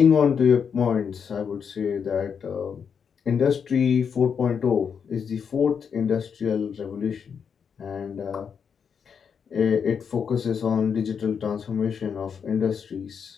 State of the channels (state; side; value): quieter; right; 6.8 dB